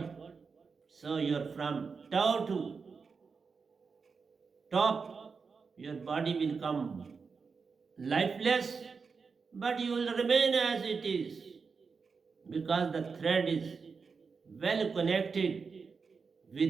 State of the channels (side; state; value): left; quieter; 5.1 dB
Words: So you're from tau to top, your body will come lifeless, but you will remain as it is, because the thread is well connected